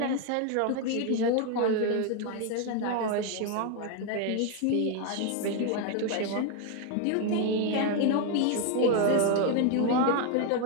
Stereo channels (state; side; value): different; both; correlation 0.01